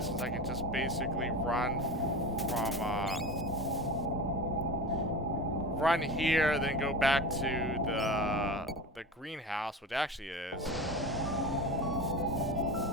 since I can just basically run from run here, then go back to the greenhouse, which actually is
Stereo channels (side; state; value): both; normal; correlation 0.30